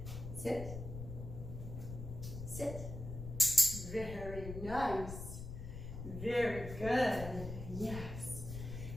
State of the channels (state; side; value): noise; left; rumble, 8 dB below the sound